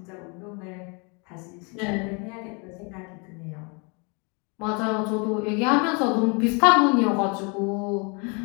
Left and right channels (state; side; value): quieter; right; 33.1 dB